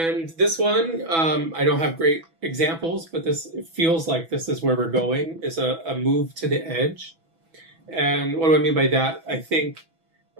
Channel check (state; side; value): late; left; 6.1 ms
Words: this one, I don't have great examples, but it feels like this is where we're going, is a move to the edge. And what do I mean by that? I think